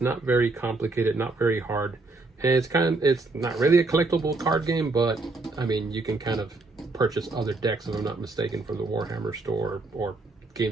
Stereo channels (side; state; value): left; quieter; 3.4 dB